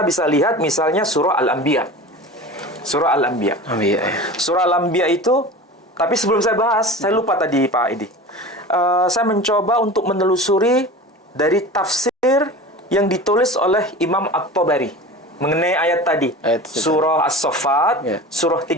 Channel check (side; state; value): both; normal; correlation 0.34